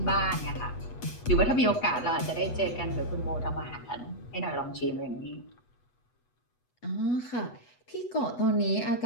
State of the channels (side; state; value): right; late; 8.2 ms